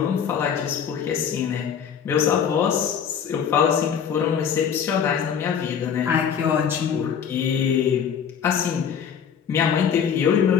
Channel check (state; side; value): quieter; right; 7.8 dB